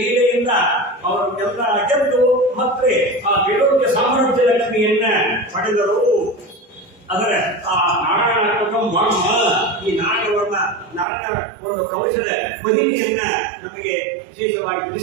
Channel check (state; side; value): drops out; left; at 11.1 s